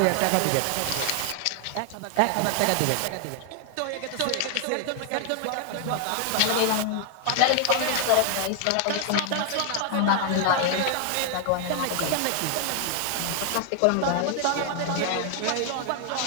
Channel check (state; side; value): different; both; correlation 0.00